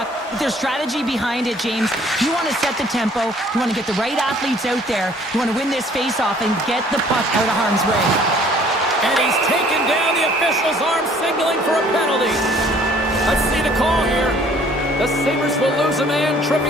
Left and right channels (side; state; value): both; normal; correlation 0.57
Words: But there's strategy behind it, James. You want to set the tempo. You want to get the right athletes out there. You want to win this face-off and get the puck out of harm's way. And he's taken down the official's arm, signaling for a penalty. Let's see the call here. The Sabres will lose a man,